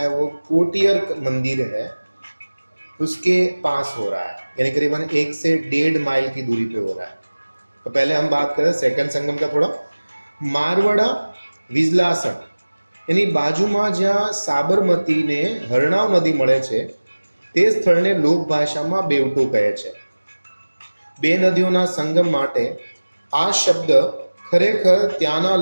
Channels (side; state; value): both; inverted; correlation -1.00